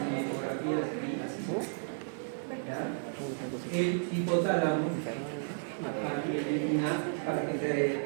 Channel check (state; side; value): silent; left; 56 dB below the other